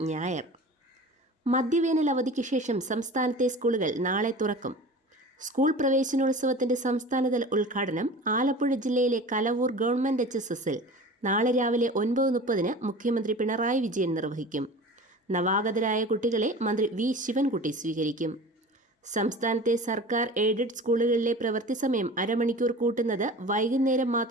ഞായർ. മധ്യവേനൽ അവധിക്ക് ശേഷം സംസ്ഥാനത്തെ സ്കൂളുകൾ നാളെ തുറക്കും. സ്കൂൾ പ്രവേശനോത്സവത്തിന്റെ സംസ്ഥാനതല ഉദ്ഘാടനം ആലപ്പുഴ ജില്ലയിലെ കലവൂർ ഗവൺമെന്റ് HSSൽ നാളെ രാവിലെ 9:30 മുഖ്യമന്ത്രി പിണറായി വിജയൻ നിർവഹിക്കും. നവാഗതരായ കുട്ടികളെ മന്ത്രി വി ശിവൻകുട്ടി സ്വീകരിക്കും. സംസ്ഥാനത്തെ സർക്കാർ എയ്ഡഡ് സ്കൂളുകളിലെ പ്രവൃത്തി സമയം അരമണിക്കൂർ കൂട്ടുന്നത് വൈകുന്നേരം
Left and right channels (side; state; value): both; normal; correlation 0.37